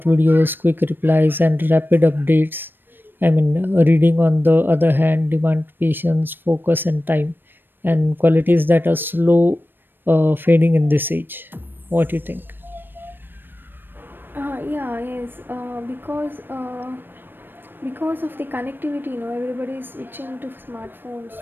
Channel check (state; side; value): late; left; 0.096 ms